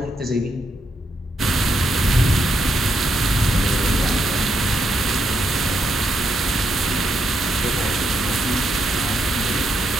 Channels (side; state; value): both; normal; correlation 0.79